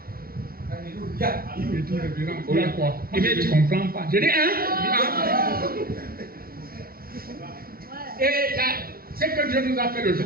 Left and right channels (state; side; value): late; left; 0.43 ms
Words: Il me dit, révérend, il y a quoi? Je ne comprends pas. Je dis, hein? Et là, c'est que Dieu nous a fait le jour